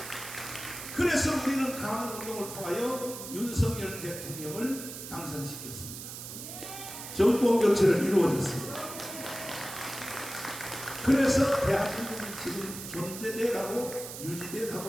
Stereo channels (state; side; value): noise; right; hiss, 10 dB below the sound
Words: 그래서 우리는 강원운동을 통하여 윤석열 대통령을 당선시켰습니다. 정권 교체를 이루어졌습니다. 그래서 대한민국이 지금 존재돼 가고 유지돼